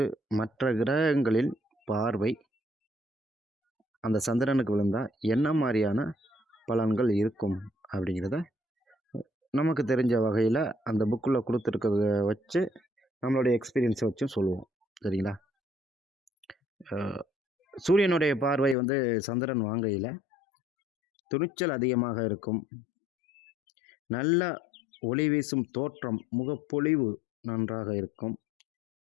மற்ற கிரகங்களில் பார்வை அந்த சந்திரனுக்கு விழுந்தால் என்ன மாதிரியான பலன்கள் இருக்கும் அப்படிங்கிறத நமக்கு தெரிஞ்ச வகையில் அந்த புக்கில் கொடுத்துருக்கிறத வச்சு நம்மளுடைய எக்ஸ்பீரியன்ஸை வச்சும் சொல்லுவோம். சரிங்களா? சூரியனுடைய பார்வை சந்திரன் வாங்கையில் துணிச்சல் அதிகமாக இருக்கும். நல்ல ஒளி வீசும் தோற்றம், முகப்பொழிவு நன்றாக இருக்கும்.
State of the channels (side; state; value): right; drops out; at 18.8 s